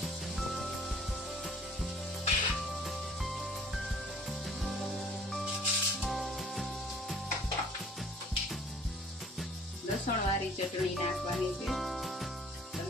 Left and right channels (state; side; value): normal; both; correlation 0.54